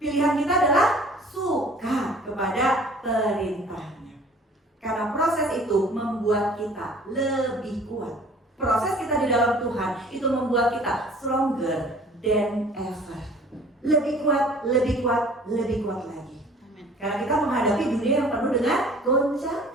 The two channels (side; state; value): both; normal; correlation 0.50